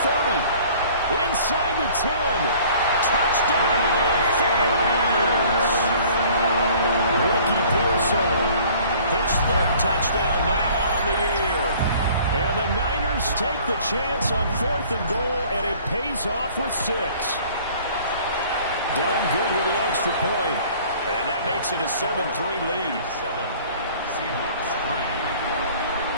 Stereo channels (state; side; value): inverted; both; correlation -0.52